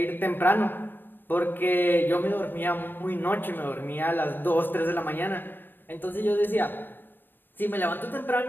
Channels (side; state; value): right; late; 0.094 ms